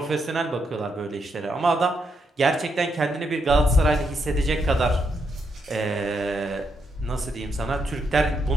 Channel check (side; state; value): both; normal; correlation 0.80